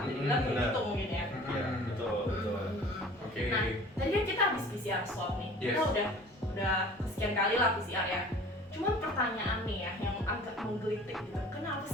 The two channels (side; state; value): both; normal; correlation 0.45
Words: Jadi bilang gitu mungkin ya. Iya, betul. Oke. Nah, tadi kan kita habis PCR swab nih. Yes. Kita udah sekian kali lah PCR ya. Cuman pertanyaan nih ya yang agak menggelitik gitu. Kenapa